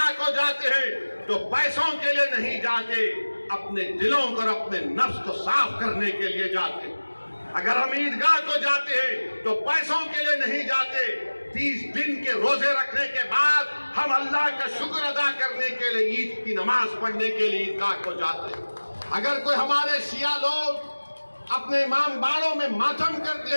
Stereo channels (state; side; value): inverted; both; correlation -1.00